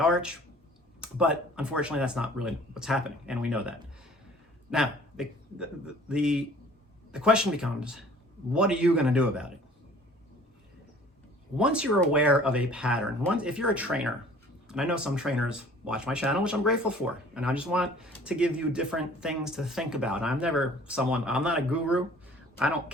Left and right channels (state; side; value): normal; both; correlation 0.51